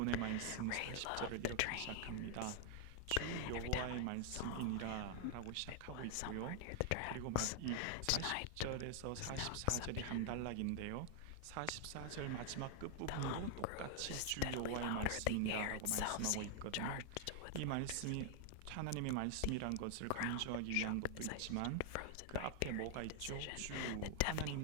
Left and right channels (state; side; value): different; both; correlation 0.00